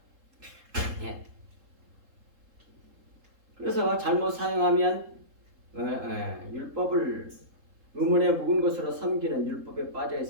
예. 그래서 잘못 사용하면 율법을 의문에 묵은 것으로 섬기는 율법에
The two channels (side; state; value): left; late; 3.7 ms